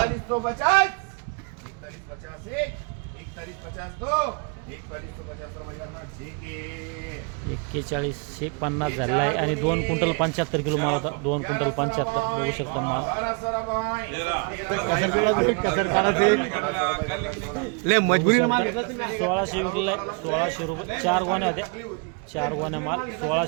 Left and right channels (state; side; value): quieter; left; 34.4 dB